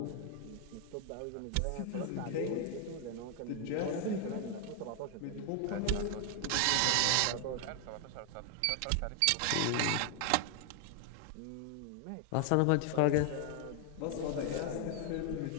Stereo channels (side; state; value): both; different; correlation 0.00